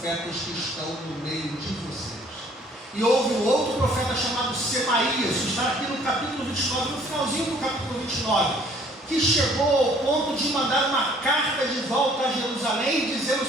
que estão no meio de vocês. E houve um outro profeta chamado Semaías, que está aqui no capítulo 29, no finalzinho do capítulo 29, que chegou ao ponto de mandar uma carta de volta a Jerusalém, dizendo o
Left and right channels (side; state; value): both; normal; correlation 0.58